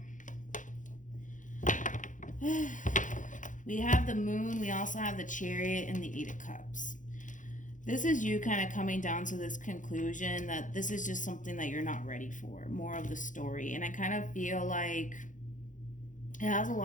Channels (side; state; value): right; late; 0.37 ms